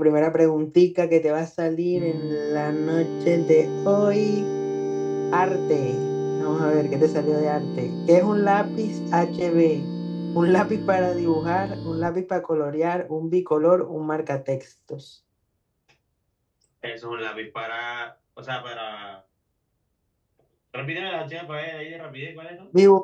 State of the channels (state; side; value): identical; both; correlation 1.00